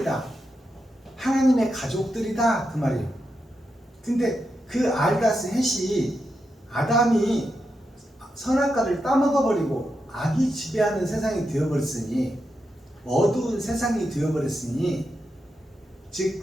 하나님의 가족들이다, 그 말이에요. 근데 그 알다스 헷이 아담이 선악과를 따먹어버리고 악이 지배하는 세상이 되어버렸으니, 어두운 세상이 되어버렸으니,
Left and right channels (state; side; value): normal; both; correlation 0.86